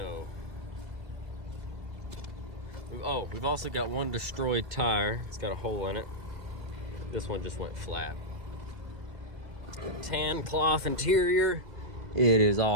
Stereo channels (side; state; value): left; late; 2.0 ms